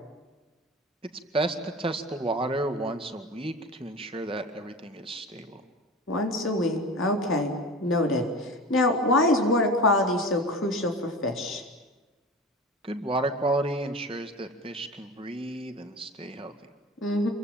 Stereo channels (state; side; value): normal; both; correlation 0.33